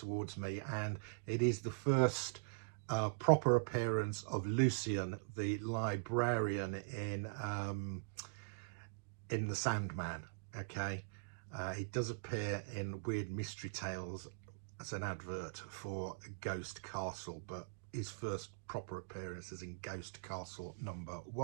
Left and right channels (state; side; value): quieter; left; 36.6 dB